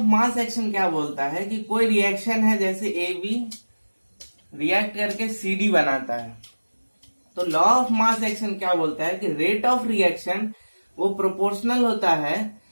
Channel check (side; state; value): both; inverted; correlation -1.00